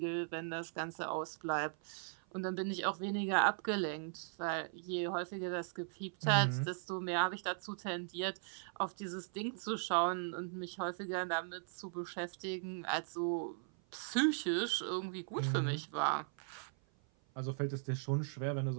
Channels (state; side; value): silent; left; 52 dB below the other